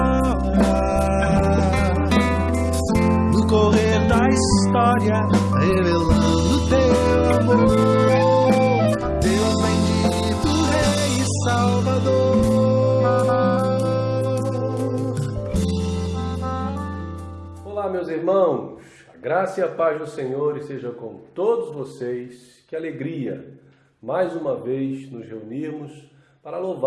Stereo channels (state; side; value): identical; both; correlation 1.00